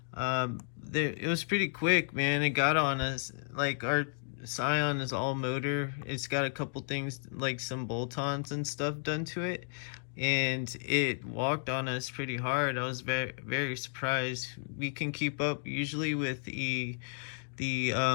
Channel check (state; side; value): silent; right; digital silence